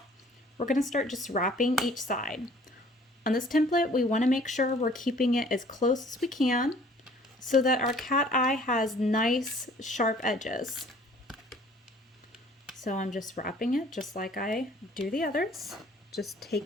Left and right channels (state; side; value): normal; both; correlation 0.54